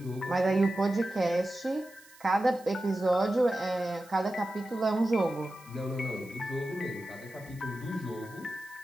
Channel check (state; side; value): noise; right; hiss, 24 dB below the sound